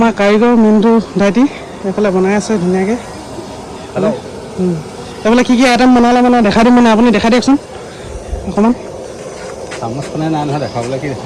কাৰিকৰ মিণ্টু দাইটি এইফালে বনাই আছে ধুনীয়াকৈ এইফালে কি কি আইটেম বনালে মানে দেখাই দিম মানে আপুনি দেখাই দিয়কচোন অকণমান চামুচ মানে নাই নহয় দেখাবলৈ কি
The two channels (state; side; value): identical; both; correlation 1.00